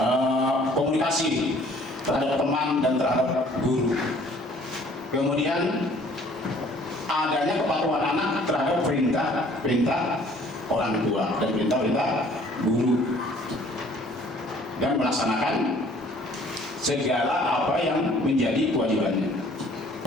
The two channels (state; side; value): normal; both; correlation 0.56